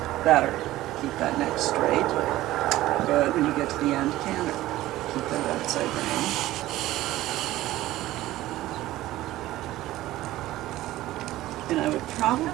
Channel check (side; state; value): left; quieter; 15.9 dB